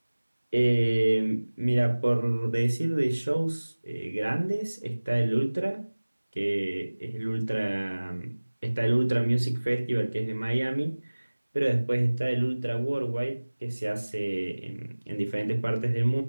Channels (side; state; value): both; inverted; correlation -1.00